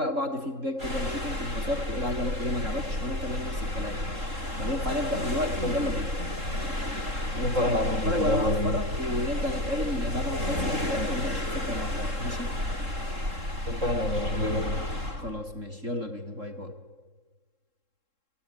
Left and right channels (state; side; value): late; left; 3.7 ms